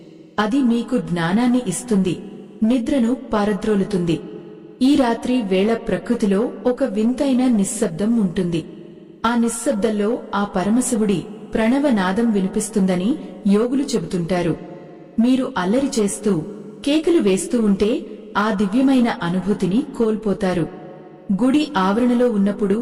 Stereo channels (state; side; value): identical; both; correlation 1.00